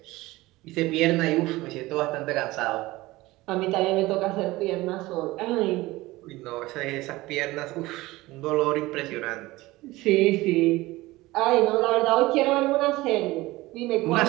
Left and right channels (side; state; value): left; quieter; 19.3 dB